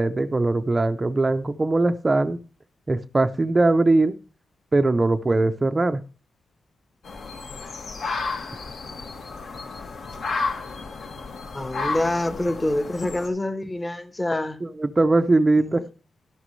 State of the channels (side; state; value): both; normal; correlation 0.96